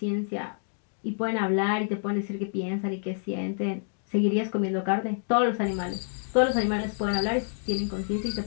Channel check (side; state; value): right; silent; digital silence